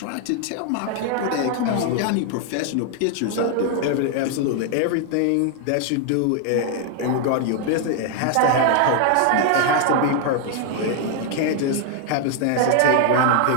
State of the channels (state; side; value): different; both; correlation 0.00